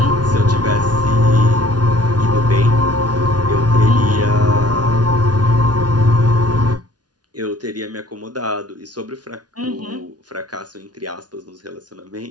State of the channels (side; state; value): left; late; 0.69 ms